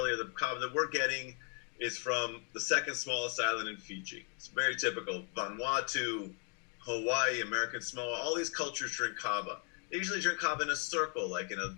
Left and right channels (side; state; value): right; quieter; 34.6 dB